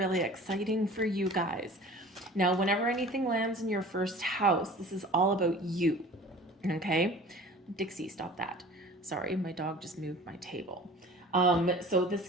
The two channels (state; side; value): normal; both; correlation 0.43